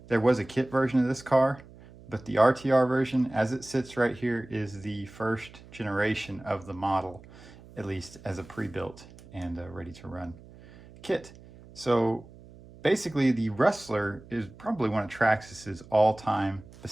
There was a kit version of this car, but the RTR version, as it sits right here, is the first generation of the model, at least as a pre-built and ready to run kit. So basically, the Rustler is probably one of Traxxas's all-time,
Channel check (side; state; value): right; noise; hum, 20 dB below the sound